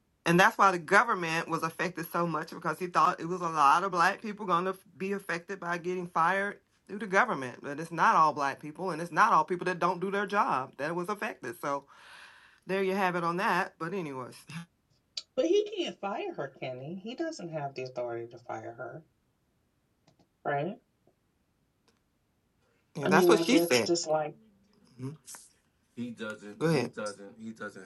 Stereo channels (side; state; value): both; identical; correlation 1.00